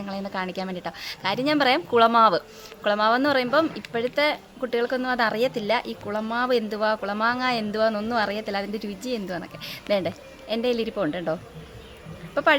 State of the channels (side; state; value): both; identical; correlation 1.00